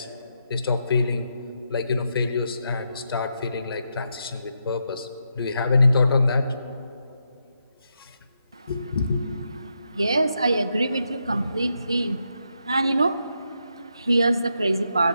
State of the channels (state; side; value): inverted; both; correlation -0.82